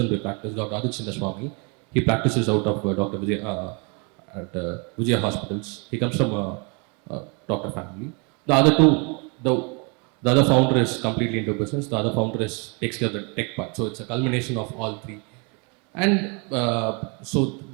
by practice, Dr. Aditya Swami. He practices out of Dr. Vijay, at Vijaya Hospitals. He comes from a doctor family. The other 2, the other founder is completely into business. The other founder takes care of the tech part. So it's a culmination of all 3. And so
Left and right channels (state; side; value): quieter; left; 33.3 dB